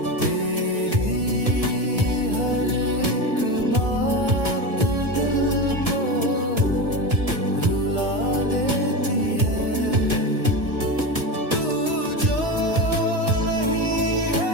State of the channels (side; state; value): left; late; 1.5 ms